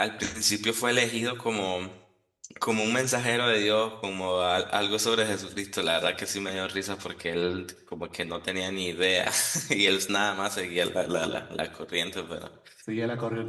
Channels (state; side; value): identical; both; correlation 1.00